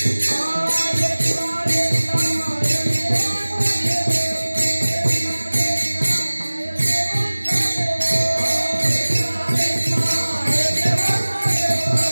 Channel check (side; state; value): both; inverted; correlation -1.00